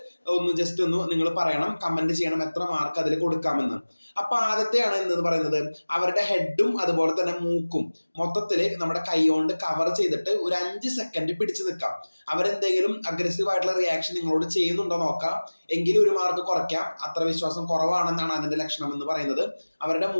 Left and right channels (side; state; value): both; inverted; correlation -1.00